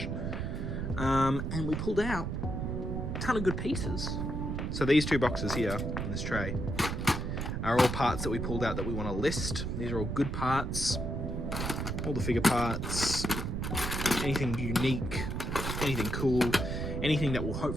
And we pulled out a ton of good pieces. So these two boxes here in this tray are all parts that we pulled out that we want to list. These are all good parts, all the figure parts, anything unique, anything cool, anything that will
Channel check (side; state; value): right; noise; rumble, 2 dB below the sound